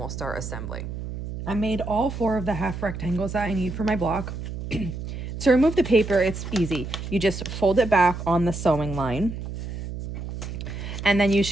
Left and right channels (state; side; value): noise; right; hum, 7 dB below the sound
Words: start assembling. I made all 4 of the half rectangles that I need for my block. To remove the paper, it's easy. You just fold it back on the sewing line, and then you